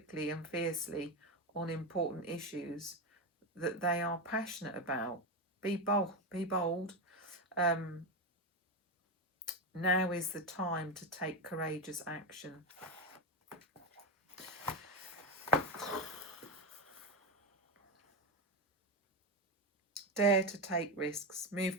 and fiercely on important issues that they are passionate about. Be bold. Now is the time to take courageous action. Dare to take risks.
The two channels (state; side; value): normal; both; correlation 0.13